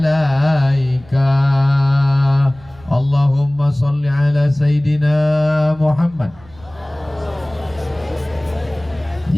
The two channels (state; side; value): noise; right; rumble, 24 dB below the sound